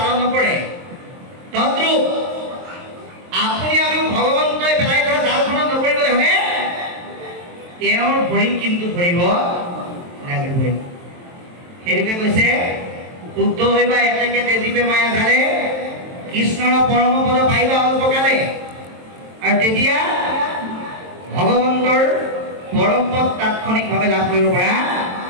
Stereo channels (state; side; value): late; left; 23 ms